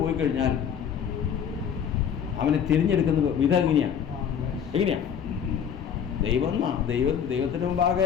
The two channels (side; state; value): right; quieter; 8.0 dB